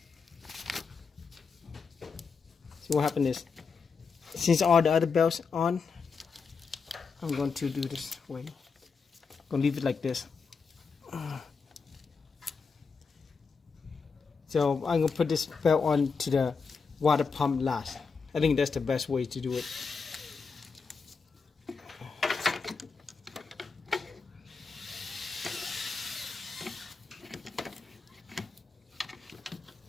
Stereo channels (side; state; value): right; quieter; 5.1 dB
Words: So what happened is, since all the other belts on, I'm going to do this way. I'm going to leave it like this. So I'm going to put this belt on to the water pump last. I think that's the best way to do it.